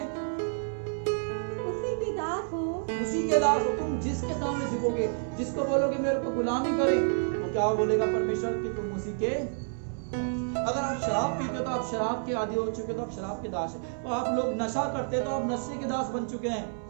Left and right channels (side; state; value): left; silent; 58 dB below the other